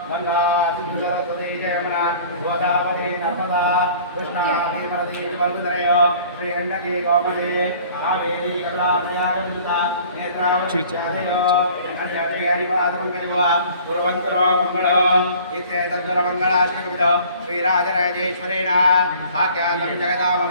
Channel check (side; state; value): both; inverted; correlation -0.50